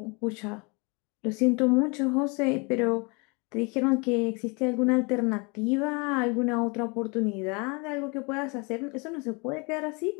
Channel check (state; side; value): quieter; right; 30.7 dB